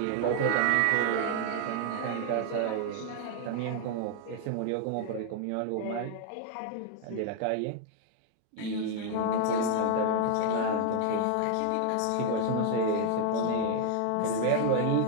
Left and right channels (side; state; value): both; different; correlation 0.00